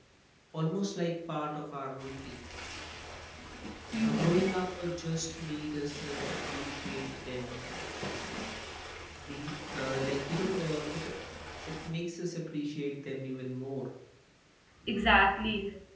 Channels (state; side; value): identical; both; correlation 1.00